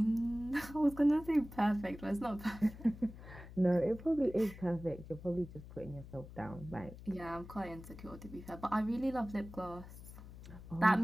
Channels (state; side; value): noise; left; hum, 15 dB below the sound